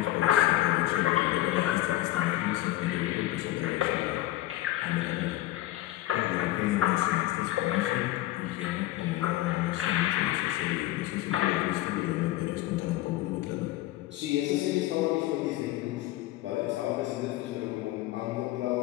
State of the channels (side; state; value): right; quieter; 16.0 dB